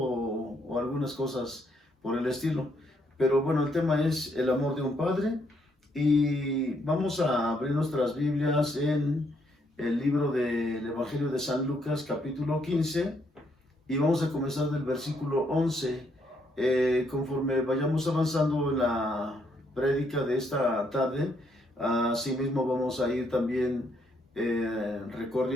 algunas cosas por el estilo. Pero bueno, el tema es el amor de un padre y vamos a abrir nuestras Biblias en el libro del Evangelio de San Lucas, capítulo 15, y vamos a comenzar del versículo 11. Conforme vayamos avanzando en la prédica de esta tarde, asimismo vamos a ir también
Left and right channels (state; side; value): normal; both; correlation 0.73